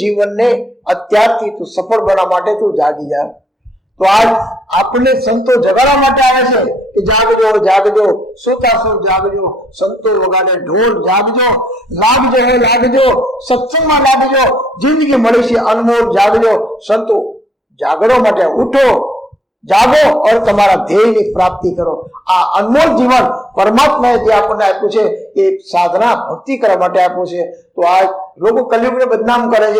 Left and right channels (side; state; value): both; normal; correlation 0.74